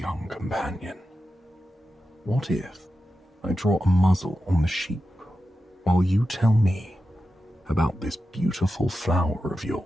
companion. What if I draw a muzzle on the sheep while you tell me about this beautiful flower of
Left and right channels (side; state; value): both; normal; correlation 0.91